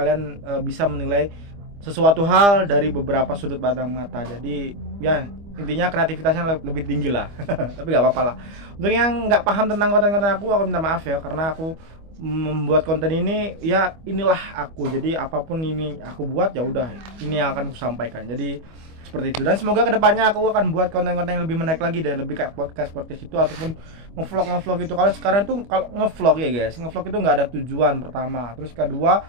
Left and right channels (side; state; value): left; late; 25 ms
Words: bisa menilai sesuatu hal dari beberapa sudut pandang mata. Jadi ya, intinya kreativitasnya lebih tinggi lah. Tapi nggak apa-apa lah. Untuk yang nggak paham tentang konten-konten aku minta maaf ya, karena aku membuat konten ini ya inilah aku. Jadi apapun ini aku buat, ya udah, ini yang akan aku sampaikan. Jadi seperti itu. Dan semoga kedepannya aku akan buat konten-konten yang lebih menarik lagi deh, lebih kayak podcast itu ataupun ngevlog itu. Kalau sekarang tuh, kalau ngevlog ya guys, ngevlog itu nggak ada tujuan pertama. Terus kedua,